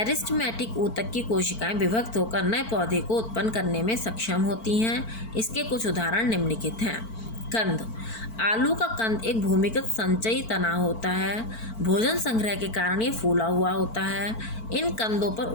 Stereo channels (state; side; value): late; right; 4.5 ms